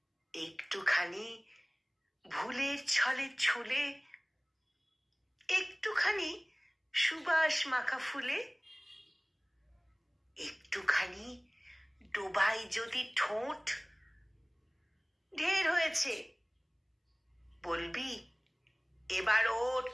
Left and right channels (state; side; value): identical; both; correlation 1.00